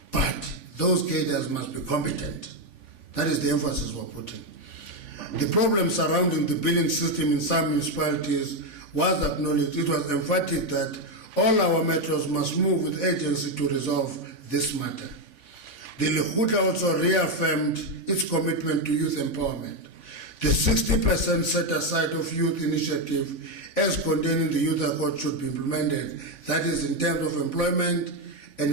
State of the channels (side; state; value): left; late; 3.5 ms